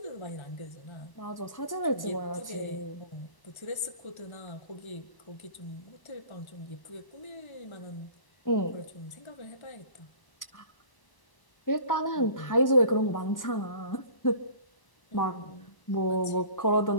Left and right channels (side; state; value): right; late; 1.0 ms